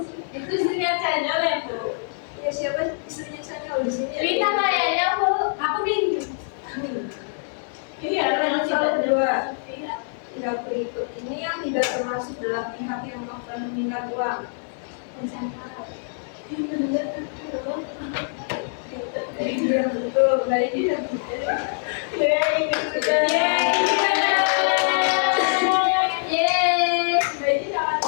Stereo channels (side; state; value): right; silent; digital silence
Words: Itu istrinya channel ya Bu? Ya siapa istrinya Chanyeol di sini? Rita kayaknya Bu. Aku nih. Iya, Lanjut soal kedua. Pihak berikut ini yang tidak termasuk dalam pihak yang akan meminta uang. Iya betul, baik ya.